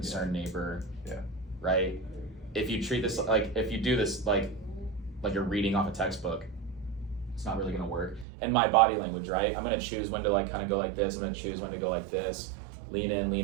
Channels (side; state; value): left; drops out; at 8.2 s